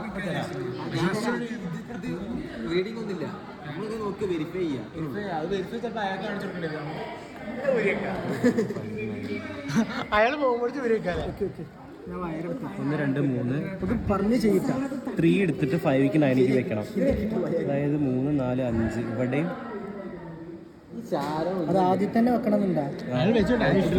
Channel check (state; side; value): identical; both; correlation 1.00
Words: റീഡിംഗ് ഒന്നുമില്ല. നമ്മളിത് നോക്കി വെരിഫൈ ചെയ്യാം. അയാൾ പോകുമ്പോഴേക്കും വരും. 1 2 3 പറഞ്ഞ് ചെയ്യിക്കാം. 3 എടുത്തിട്ട് 5ക്ക് 9ക്ക് വെക്കണം. അതായത് 3 4 5 ഇവിടെയും അത് ആദ്യം തന്നെ വെക്കണം എന്നുണ്ടാ.